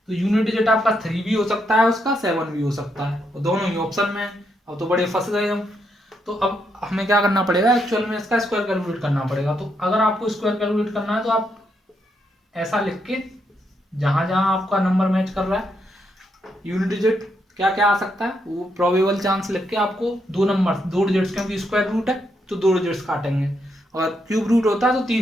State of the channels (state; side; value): normal; both; correlation 0.79